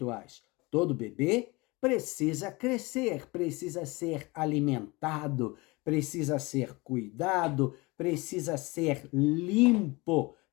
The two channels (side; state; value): right; quieter; 24.4 dB